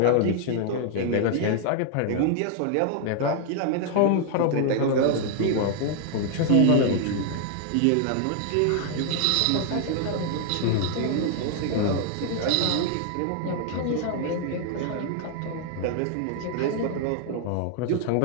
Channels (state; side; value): different; both; correlation 0.00